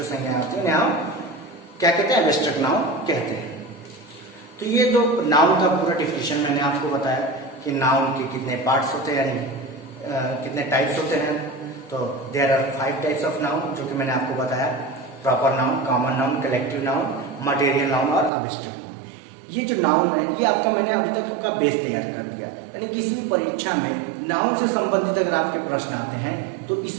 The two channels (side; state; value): left; drops out; at 18.3 s